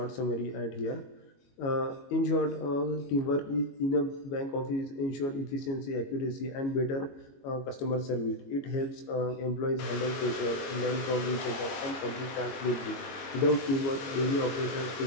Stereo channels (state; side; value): late; right; 22 ms